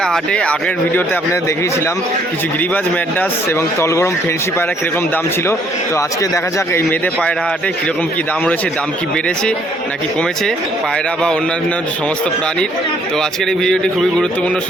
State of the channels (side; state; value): both; normal; correlation 0.65